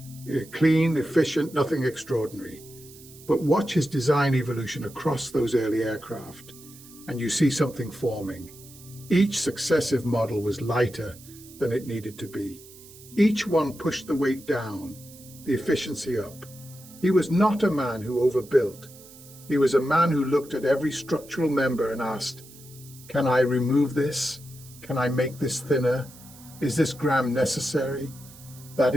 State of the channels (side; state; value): right; noise; hiss, 20 dB below the sound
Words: clean, efficient, nothing extraordinary. But watch his design evolution across those early aircraft, and you see something forming. Each successive model was lighter than it needed to be. Each one pushed the weight down, the efficiency up. He was not a man who overbuilt. He was a man who looked at every structural member and asked, can I remove this? Can I make this thinner? Is this gram necessary? That